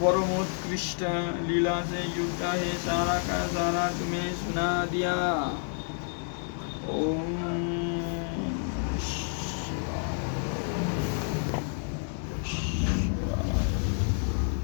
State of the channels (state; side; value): silent; right; 55 dB below the other